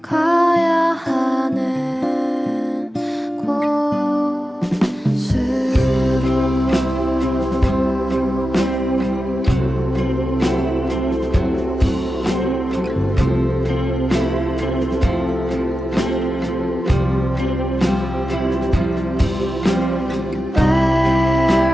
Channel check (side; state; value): both; normal; correlation 0.92